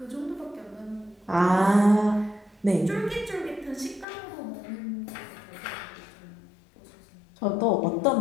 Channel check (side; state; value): right; drops out; at 4.0 s